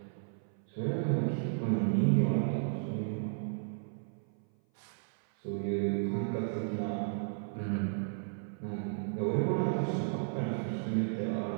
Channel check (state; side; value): silent; left; 55 dB below the other